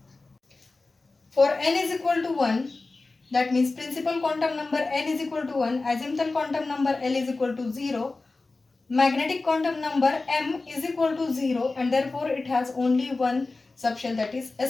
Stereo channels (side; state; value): right; quieter; 3.5 dB